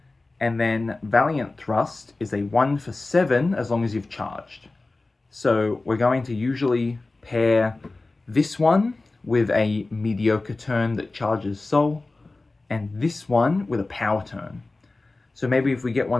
And then Valiant Thrust is a 1 for 7 as long as you've charged. So we're going to usually pair this one with a mediocre turn that charges soul, and this one with a power turn. So maybe if we get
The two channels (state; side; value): quieter; right; 3.3 dB